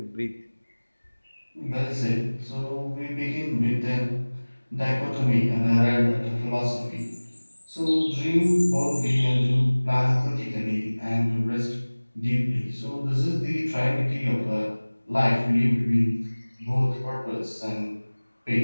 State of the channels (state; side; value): inverted; both; correlation -1.00